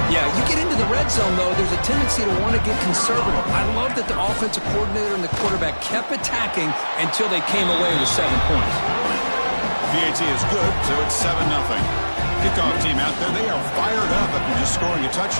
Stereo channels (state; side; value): inverted; both; correlation -1.00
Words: Yeah, you get into the red zone, though, there's a tendency to want to get conservative. I love that the offensive coordinator and the quarterback kept attacking until they came away with 7 points. PAT is good, so it's 7-0. Kickoff team out there, they are fired up after just scoring a